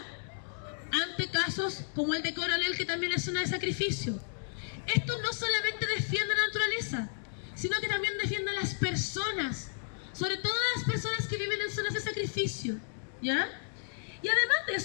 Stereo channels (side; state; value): right; silent; digital silence